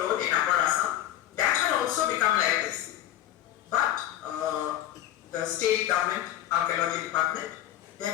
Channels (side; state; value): right; quieter; 12.6 dB